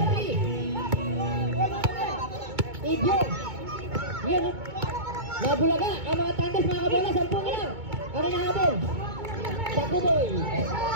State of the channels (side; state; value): left; late; 2.2 ms